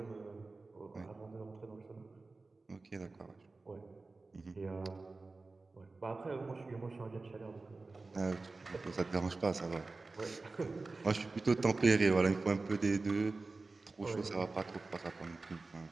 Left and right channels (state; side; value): quieter; left; 3.6 dB